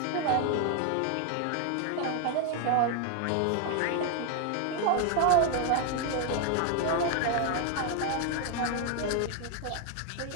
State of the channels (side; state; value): both; different; correlation 0.00